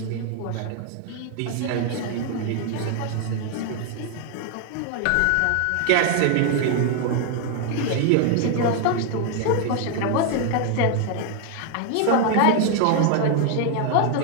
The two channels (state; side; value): different; both; correlation 0.00